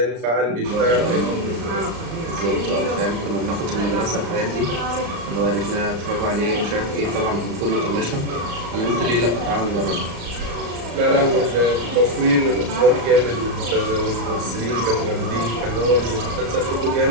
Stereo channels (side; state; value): left; late; 34 ms